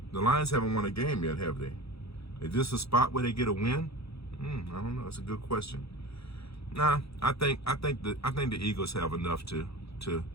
haven't won a game yet, have they? Is this a spot where they get a win? I don't know. That's a good question. Nah, I think the Eagles have enough to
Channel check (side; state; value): right; late; 0.77 ms